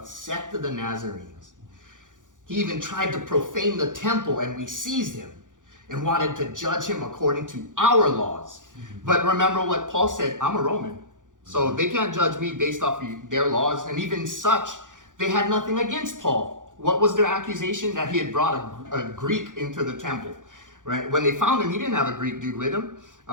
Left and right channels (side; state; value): left; late; 0.87 ms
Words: sect of the Nazarenes. He even tried to profane the temple, and we seized him and wanted to judge him according to our laws. But remember what Paul said, I'm a Roman. So they can't judge me based off of their laws. And even such, they had nothing against Paul. What was their accusation? That he had brought a Greek into the temple. Right? When they found him, he didn't have a Greek dude with him.